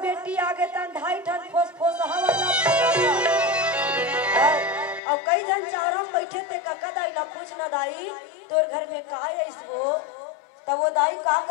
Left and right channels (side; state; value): right; drops out; at 5.0 s